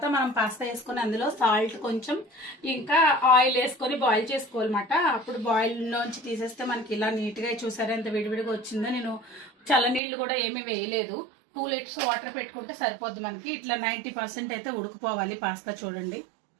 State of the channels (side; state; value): left; drops out; at 10.0 s